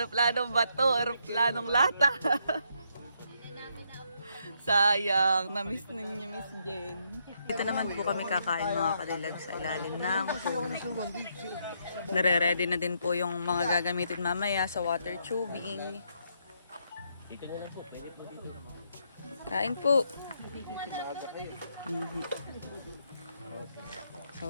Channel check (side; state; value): both; inverted; correlation -0.75